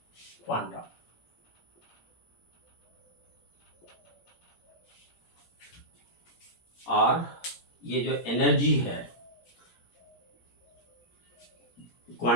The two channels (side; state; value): right; late; 17 ms